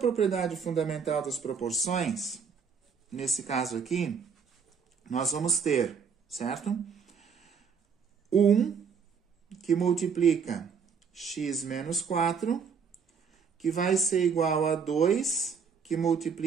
fundamental das proporções, nesse caso aqui, nós vamos ter, certo? 1 que multiplica x menos 4, que vai ser igual a 2 que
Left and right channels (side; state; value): left; quieter; 6.1 dB